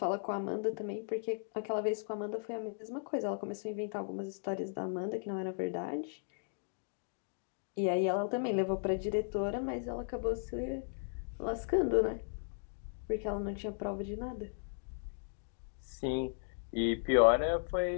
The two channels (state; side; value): silent; right; digital silence